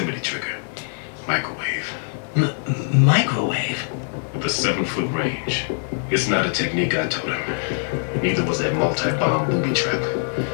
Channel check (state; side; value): silent; right; 61 dB below the other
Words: trigger. Microwave. Microwave? With a 7-foot range. It's not a technique I taught him. Neither was that multi-bomb booby trap.